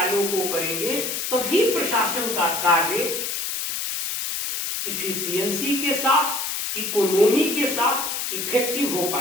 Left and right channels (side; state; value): left; noise; hiss, 3 dB below the sound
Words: को करेंगे तभी प्रशासन का कार्य इफिशियंसी के साथ, इकोनॉमी के साथ इफेक्टिव हो